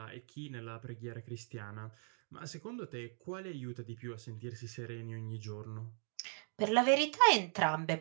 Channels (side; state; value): left; silent; 52 dB below the other